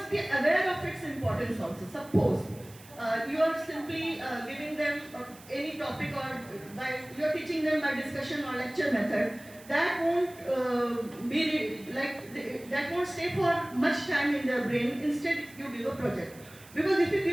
be aware of its importance also. Suppose you are simply giving them any topic, or you are teaching them by discussion or lecture method. That won't that won't stay for much time in their brain. Instead, you give a project. Because if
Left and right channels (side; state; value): right; noise; hiss, 21 dB below the sound